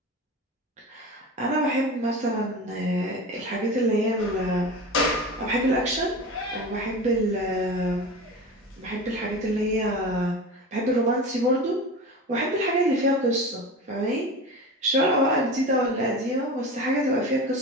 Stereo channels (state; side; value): normal; both; correlation 0.30